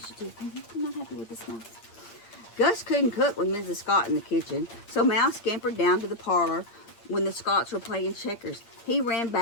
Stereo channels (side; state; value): right; late; 8.7 ms